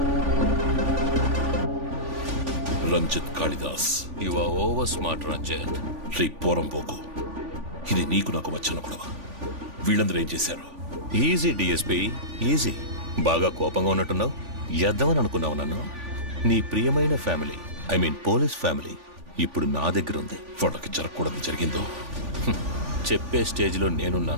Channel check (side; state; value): left; late; 3.5 ms